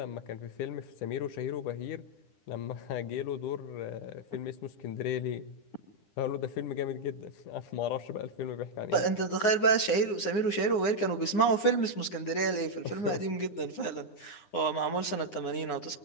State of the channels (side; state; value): right; late; 9.6 ms